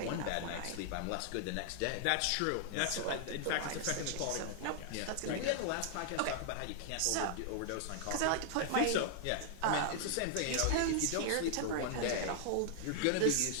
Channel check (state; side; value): different; both; correlation 0.00